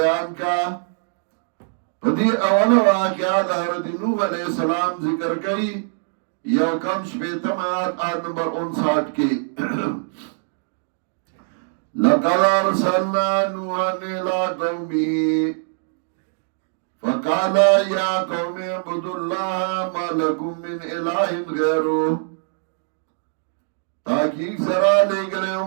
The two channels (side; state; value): left; silent; digital silence